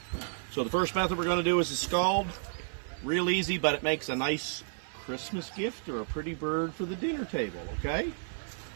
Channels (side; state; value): left; silent; 57 dB below the other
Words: So the first method we're going to do is a scald. Real easy, but it makes a nice Christmas gift or a pretty bird for the dinner table, okay?